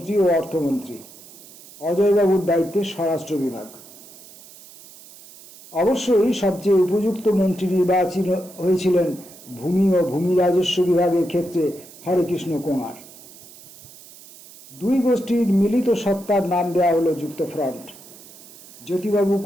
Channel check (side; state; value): right; noise; hiss, 20 dB below the sound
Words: ও অর্থমন্ত্রী। অজয়বাবুর দায়িত্বে স্বরাষ্ট্র বিভাগ। অবশ্যই সবচেয়ে উপযুক্ত মন্ত্রী নির্বাচিত হয়েছিলেন ভূমি ও ভূমি রাজস্ব বিভাগের ক্ষেত্রে হরেকৃষ্ণ কোঙার। দুই গোষ্ঠীর মিলিত সত্তার নাম দেওয়া হলো যুক্তফ্রন্ট। জ্যোতিবাবু